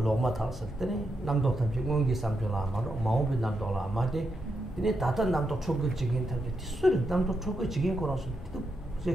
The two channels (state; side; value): normal; both; correlation 0.84